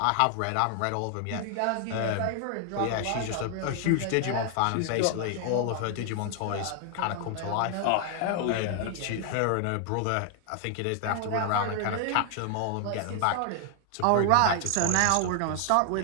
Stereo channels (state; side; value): different; both; correlation 0.00